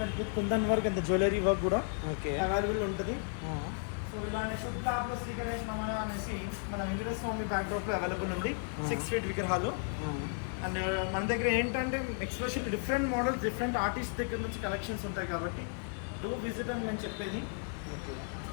kundan work and jewellery work కూడా అవైలబుల్ ఉంటుంది. సో ఇలానే శుద్ధ లాభలో శ్రీకరేష్ నమః అనేసి మన వెంకటేశ్వర స్వామి బ్యాక్ డ్రాప్ లో అవైలబుల్ ఉంది. 6 feet విగ్రహాలు. అండ్ మన దగ్గర ఏంటంటే especially different models, different artist దగ్గర నుంచి కలెక్షన్స్ ఉంటాయి కాబట్టి డూ విజిట్ అని నేను చెప్పేది. ఓకే.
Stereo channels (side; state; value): right; silent; 55 dB below the other